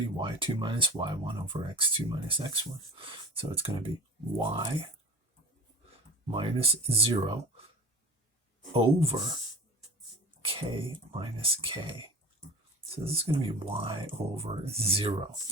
y2 minus y1 over x2 minus x1. So it's going to be y minus 0 over k minus k. So this is going to be y over 0.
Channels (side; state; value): both; normal; correlation 0.35